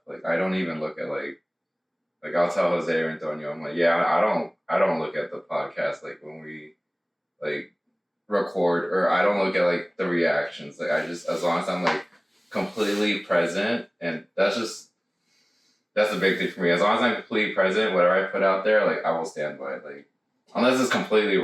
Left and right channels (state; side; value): identical; both; correlation 1.00